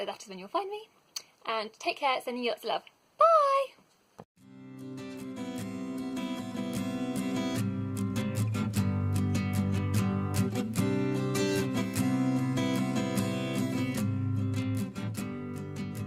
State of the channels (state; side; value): identical; both; correlation 1.00